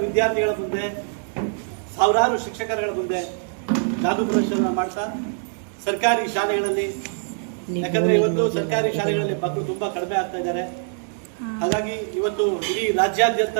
ವಿದ್ಯಾರ್ಥಿಗಳ ಮುಂದೆ, ಸಾವಿರಾರು ಶಿಕ್ಷಕರುಗಳ ಮುಂದೆ ಜಾದೂ ಪ್ರದರ್ಶನ ಮಾಡ್ತಾ ಸರ್ಕಾರಿ ಶಾಲೆಗಳಲ್ಲಿ, ಯಾಕಂದ್ರೆ ಇವತ್ತು ಸರ್ಕಾರಿ ಶಾಲೆಗಳಲ್ಲಿ ಮಕ್ಕಳು ತುಂಬಾ ಕಡಿಮೆ ಆಗ್ತಾ ಇದ್ದಾರೆ. ಹಾಗಾಗಿ ಇವತ್ತು ಇಡೀ ರಾಜ್ಯಾದ್ಯಂತ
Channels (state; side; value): silent; left; digital silence